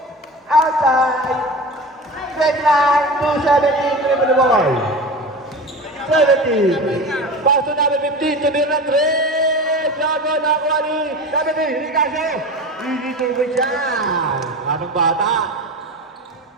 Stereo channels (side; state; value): both; normal; correlation 0.31